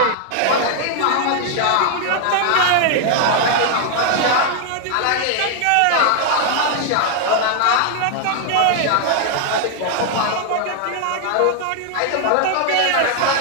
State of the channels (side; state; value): both; different; correlation 0.00